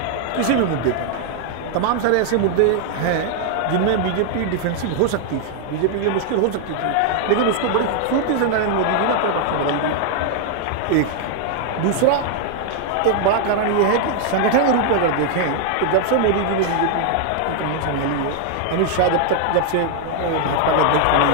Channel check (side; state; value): both; different; correlation 0.00